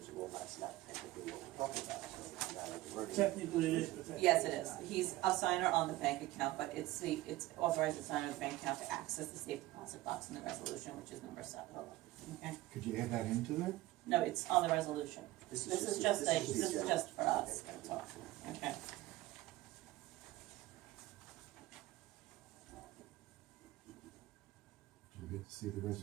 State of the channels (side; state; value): left; quieter; 17.7 dB